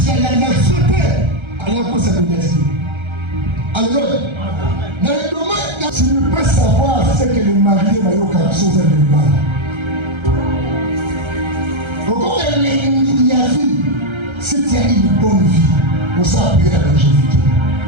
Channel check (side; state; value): left; late; 1.3 ms